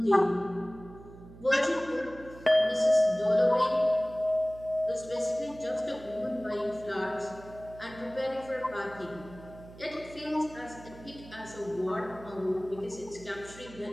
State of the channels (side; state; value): right; noise; hum, 18 dB below the sound